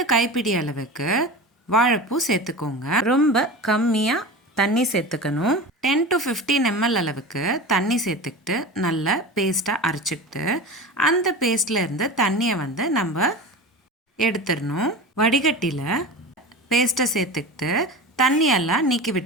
கைப்பிடி அளவுக்கு வாழைப்பூ சேர்த்துக்கோங்க. ரொம்ப கம்மியா தண்ணி சேர்த்துக்கணும். 10 to 15 ml அளவுக்கு தண்ணி சேர்த்துக்கிட்டு நல்லா பேஸ்ட்டாக அரைச்சிக்கிட்டு அந்த பேஸ்ட்ல இருந்து தண்ணியை நம்ம எடுத்துடணும். வடிகட்டியில் பேஸ்ட்டை சேர்த்துக்கிட்டு தண்ணியெல்லாம் நீக்கி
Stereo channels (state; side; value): normal; both; correlation 0.31